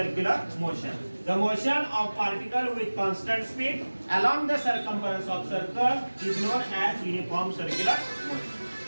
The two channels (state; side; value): inverted; both; correlation -1.00